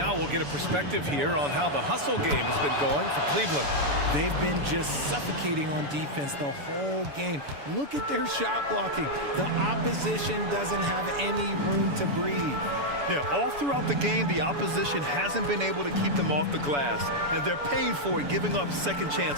we'll get a perspective here on how the hustle game has been going for Cleveland. They've been just suffocating on defense the whole game. Look at their shot blocking. The opposition doesn't have any room to breathe. Yeah, all throughout the game, the opposition hasn't been able to keep them off the glass, and they're paying for it, giving up second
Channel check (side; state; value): left; late; 7.0 ms